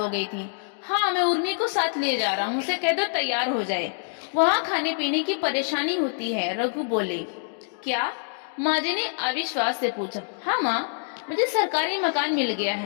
गई थी। हाँ, मैं उर्मी को साथ ले जा रहा हूँ, उसे कह दो तैयार हो जाए, वहाँ खाने पीने की परेशानी होती है, रघु बोले। क्या? माँ जी ने अविश्वास से पूछा। हाँ माँ, मुझे सरकारी मकान मिल गया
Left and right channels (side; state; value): right; silent; digital silence